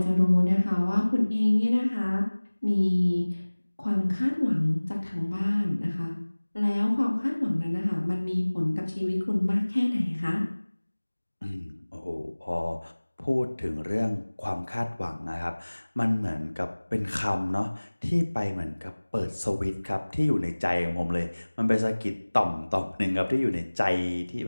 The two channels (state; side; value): inverted; both; correlation -1.00